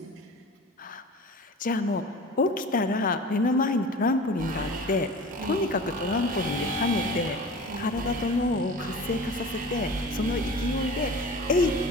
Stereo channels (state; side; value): normal; both; correlation 0.38